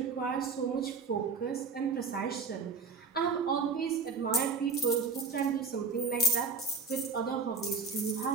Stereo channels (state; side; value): quieter; left; 4.5 dB